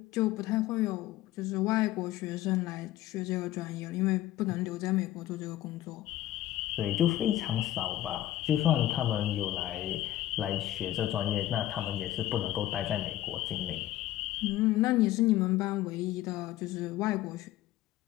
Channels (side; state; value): right; quieter; 14.1 dB